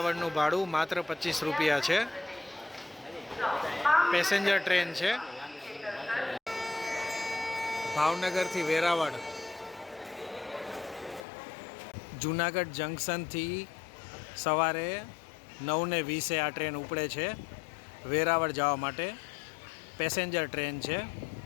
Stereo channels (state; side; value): drops out; right; at 11.2 s